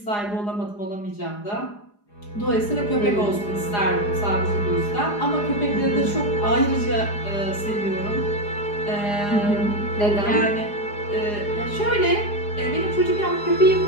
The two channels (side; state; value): right; late; 4.9 ms